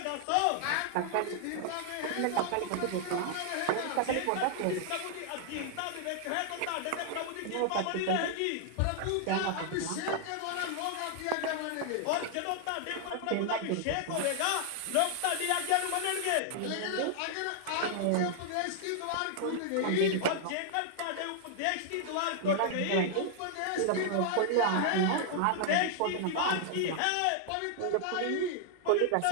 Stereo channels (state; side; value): different; both; correlation 0.00